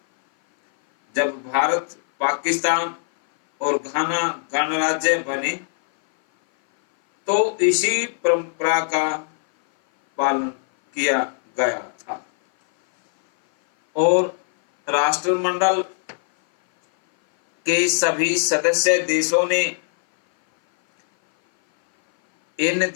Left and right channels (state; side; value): silent; right; 58 dB below the other